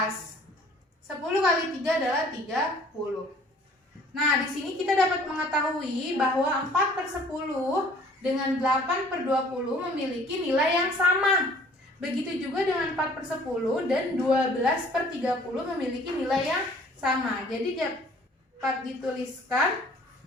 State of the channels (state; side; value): normal; both; correlation 0.54